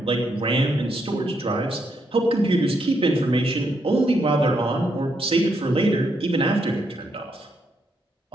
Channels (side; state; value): both; normal; correlation 0.78